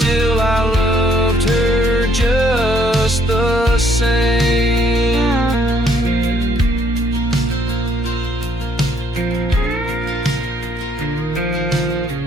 I loved her just the same.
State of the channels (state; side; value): normal; both; correlation 0.66